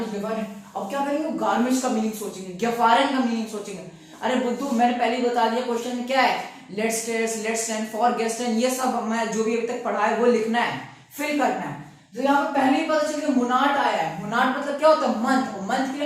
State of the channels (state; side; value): identical; both; correlation 1.00